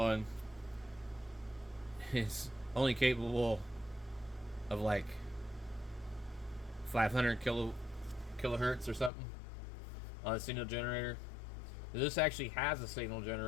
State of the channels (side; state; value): right; drops out; at 9.1 s